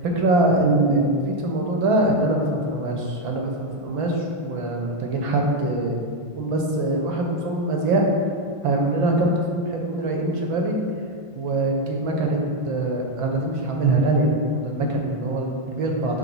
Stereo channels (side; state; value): left; late; 1.5 ms